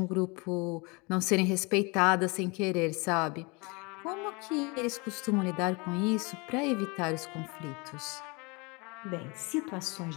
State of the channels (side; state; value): right; quieter; 28.4 dB